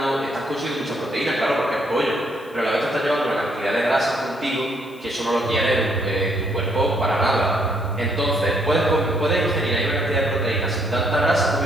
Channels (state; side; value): noise; left; hiss, 27 dB below the sound